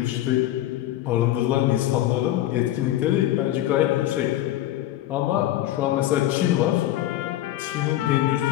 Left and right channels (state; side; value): quieter; right; 13.9 dB